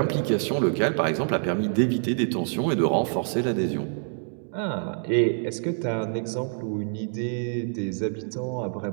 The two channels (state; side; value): silent; left; 60 dB below the other